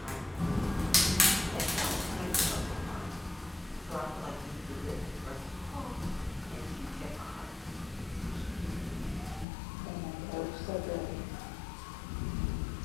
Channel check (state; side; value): drops out; right; at 9.5 s